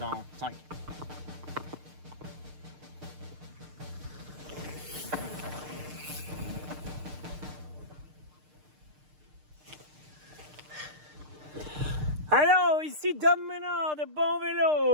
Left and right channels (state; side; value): late; left; 6.6 ms